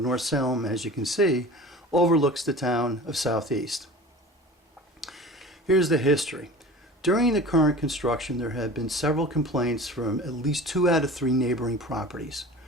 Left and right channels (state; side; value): normal; both; correlation 0.38